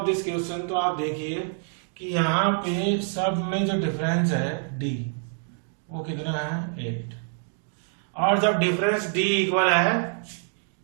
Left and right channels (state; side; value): silent; left; 61 dB below the other